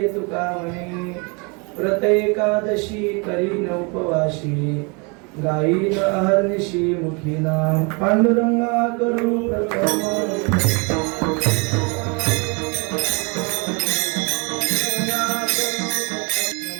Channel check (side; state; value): left; quieter; 31.6 dB